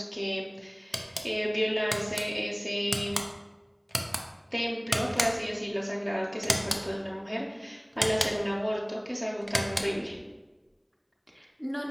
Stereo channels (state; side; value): identical; both; correlation 1.00